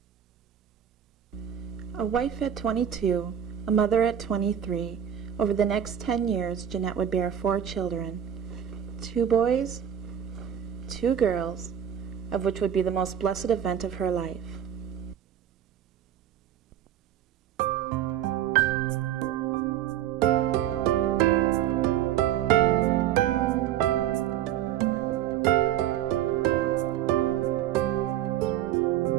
A wife at 22, a mother at 23, over the next 10 years, Jeanette would bear 4 children, 2 boys, 2 girls, of which would be the most blessed event of her life.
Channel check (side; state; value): left; quieter; 10.1 dB